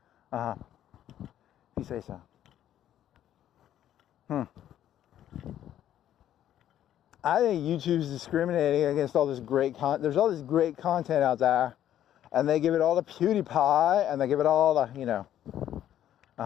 If you say so. I think YouTube's discriminating against all this great content. There's all this great content out there, and they give it all to PewDiePie, and they give it all to, you know,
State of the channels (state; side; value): quieter; right; 11.3 dB